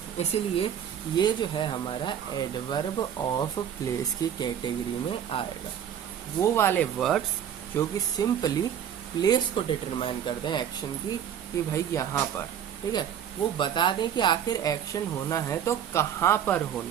इसीलिए ये जो है हमारा एडवर्ब ऑफ प्लेस की कैटेगरी में आएगा। वो वाले वर्ड्स जो कि सिंपली प्लेस को डिटरमाइन कर दें एक्शन की, कि भाई यहाँ पर, ठीक है, वो बता दें कि आखिर एक्शन होना है तो कहाँ पर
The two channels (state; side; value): quieter; left; 9.2 dB